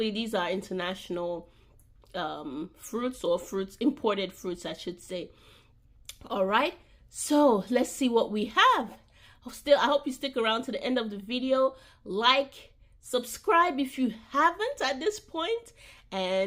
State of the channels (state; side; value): identical; both; correlation 1.00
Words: these are international fruits, or imported fruits I should say. All right, so let's see what we have. I hope you stick around to the end of the video. Like, subscribe if you haven't at this point,